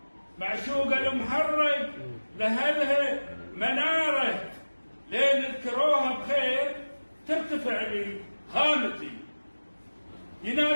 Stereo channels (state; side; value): inverted; both; correlation -1.00